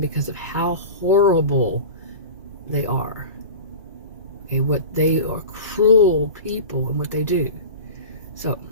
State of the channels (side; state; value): both; inverted; correlation -0.32